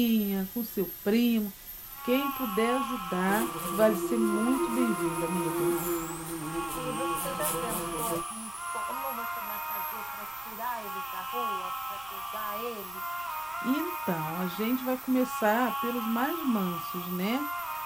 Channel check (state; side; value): noise; right; rumble, 26 dB below the sound